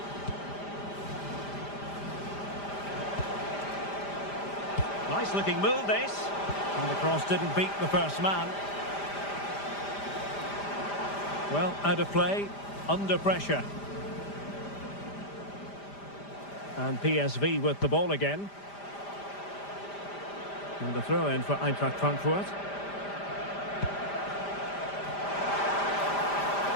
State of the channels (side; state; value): right; late; 5.0 ms